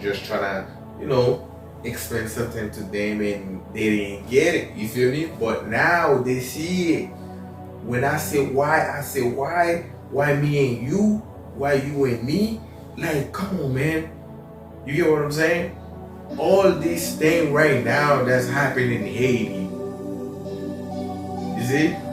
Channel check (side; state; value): both; identical; correlation 1.00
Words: just trying to, explain something to them and they didn't get it. You feel me? But now they see it. When I say why me and you? Why you and me? Like, come on, man. You get what I'm saying? All this thing right now that's happening in Haiti. You see?